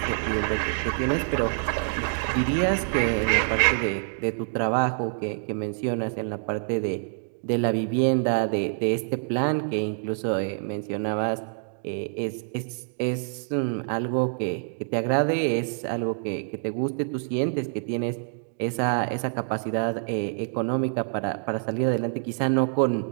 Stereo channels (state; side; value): silent; left; digital silence